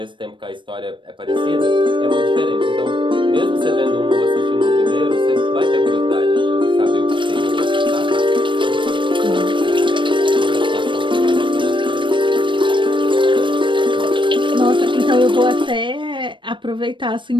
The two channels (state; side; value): late; left; 0.24 ms